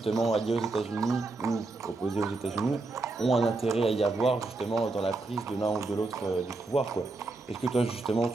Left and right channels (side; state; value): left; quieter; 3.3 dB